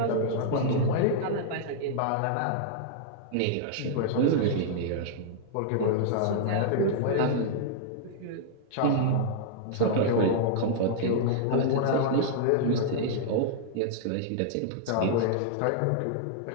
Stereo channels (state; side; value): different; both; correlation -0.02